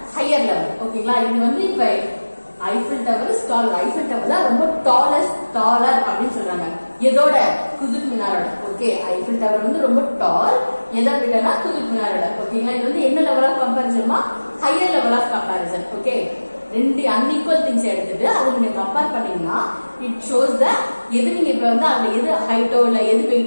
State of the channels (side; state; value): both; inverted; correlation -1.00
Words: higher level. ஓகேங்களா, இது வந்து இப்ப Eiffel Tower is tall. Eiffel Tower தான் ரொம்ப taller அப்படின்னு சொல்றாங்க. எதோட? Qutub Minarோட. ஓகே, Eiffel Tower வந்து ரொம்ப tall. எதை விடனா Qutub Minarோட. ஓகேங்களா, இது வந்து என்ன லெவல் ஆஃப் கம்பேரிசன்மா? Higher level of comparison. Okay, ரெண்டு unequal things எடுத்துட்டு அது நீங்க கம்பேர் பண்ணீங்கன்னா it shows the எது நீங்க இப்ப வந்து அது எது ஹைட்டோ இல்ல எது